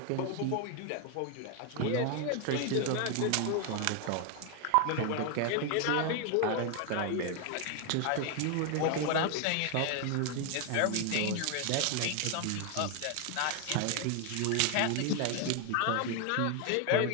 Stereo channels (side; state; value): both; different; correlation 0.01